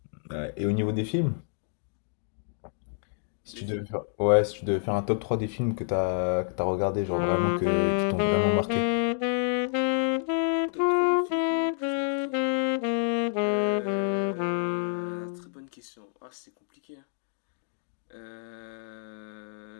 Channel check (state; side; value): silent; right; digital silence